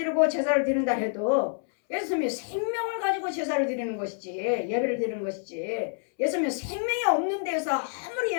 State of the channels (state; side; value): silent; right; 60 dB below the other